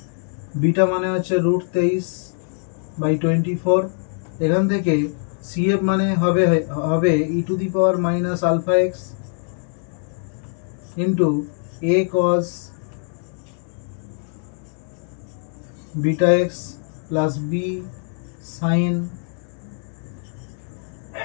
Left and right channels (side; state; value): right; silent; 57 dB below the other